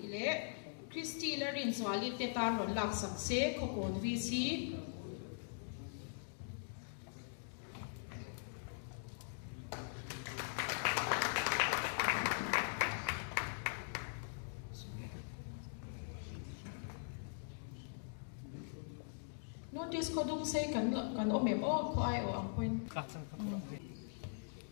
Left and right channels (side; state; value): right; silent; digital silence